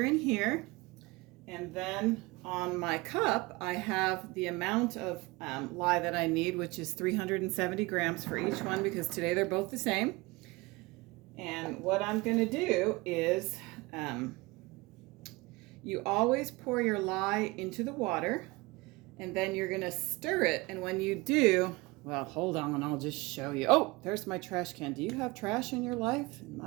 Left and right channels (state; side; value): quieter; left; 23.3 dB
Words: in here. And then on my cup, I have the amount of lye that I need, which is 370 grams for each one, because today they're both the same. And what I'm going to do is you always pour your lye into the water, and then you're going to stir it. And when you do, well, hold on, I'll just show you. Oh, there's my trash can. Do you have trash in your life? In